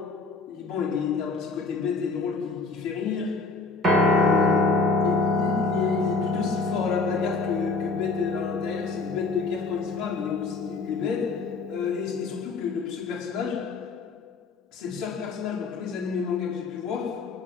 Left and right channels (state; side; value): quieter; right; 3.9 dB